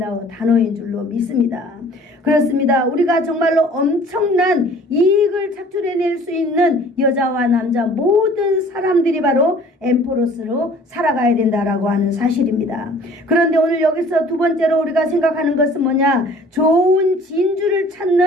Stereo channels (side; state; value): both; normal; correlation 0.51